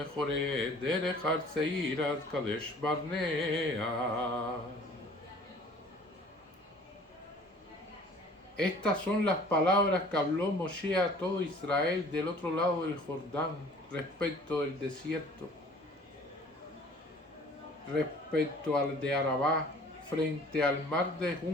דרך הר צעיר עד קדש ברנע. Estas son las palabras que habló Moshe a todo Israel del otro lado del Jordán respecto del desierto, respecto al de Arabá, frente al mar de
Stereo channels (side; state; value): both; normal; correlation 0.50